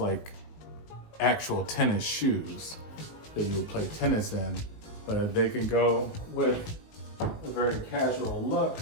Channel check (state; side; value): late; right; 19 ms